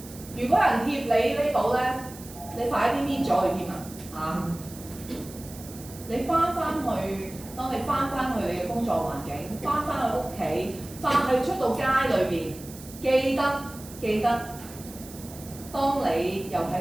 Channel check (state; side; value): noise; right; hiss, 17 dB below the sound